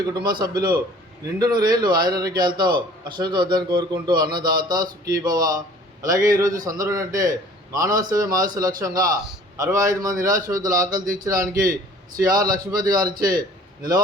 కుటుంబ సభ్యులు నిండు నూరేళ్లు ఆయురారోగ్యాలతో అశ్వత వద్దని కోరుకుంటూ అన్నదాత సుఖీభవ. అలాగే ఈరోజు సందర్భం అంటే మానవ సేవ మానవ లక్ష్యంగా 65 మంది నిరాశ్రతుల ఆకలి తీర్చడానికి శ్రీ ఆర్ లక్ష్మీపతి గారిచే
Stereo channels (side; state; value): both; normal; correlation 0.51